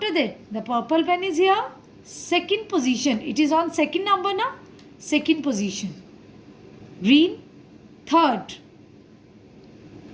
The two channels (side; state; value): both; identical; correlation 1.00